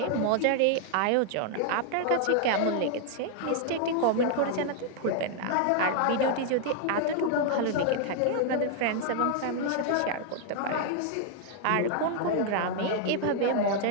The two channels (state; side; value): different; both; correlation 0.00